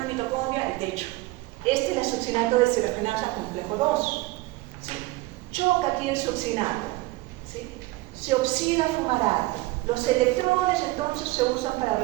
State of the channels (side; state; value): left; quieter; 20.4 dB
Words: la mitocondria, el techo. Este es el succinato de deshidrogenasa complejo 2. ¿Sí? Choca aquí el succinato. ¿Sí? Se oxida fumarato. Los electrones entonces se usan para